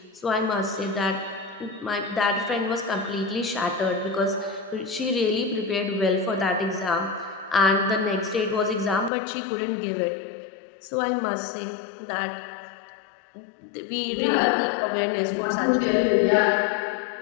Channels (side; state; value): right; drops out; at 9.1 s